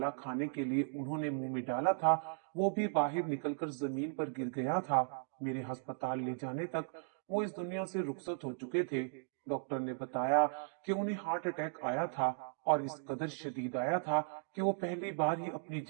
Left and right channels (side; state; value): left; silent; digital silence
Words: खाने के लिए उन्होंने मुंह में डाला था वो भी बाहर निकलकर जमीन पर गिर गया था। मेरे अस्पताल ले जाने तक वो इस दुनिया से रुखसत हो चुके थे। डॉक्टर ने बताया कि उन्हें हार्ट अटैक आया था, और इस कदर शदीद आया था कि वो पहली बार ही अपनी